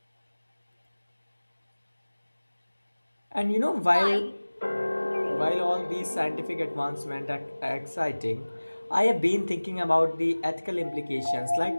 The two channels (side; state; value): both; inverted; correlation -1.00